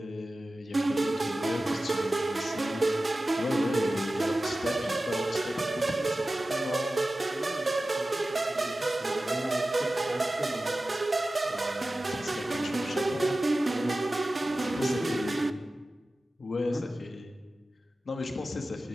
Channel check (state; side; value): normal; both; correlation 0.95